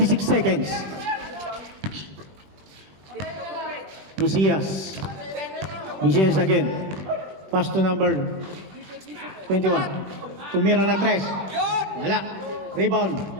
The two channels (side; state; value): left; late; 21 ms